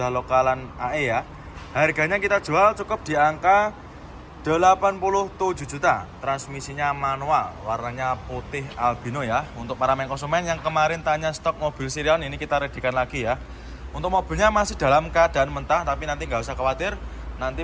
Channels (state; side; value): identical; both; correlation 1.00